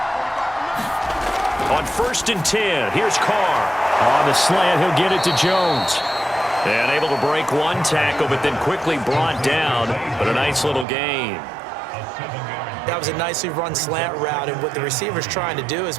On 1st and 10, here's Carr. On the slant, he'll get it to Jones. And able to break one tackle, but then quickly brought down. But a nice little gain. That was a nicely run slant route, and what the receiver's trying to do is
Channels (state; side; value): drops out; left; at 10.9 s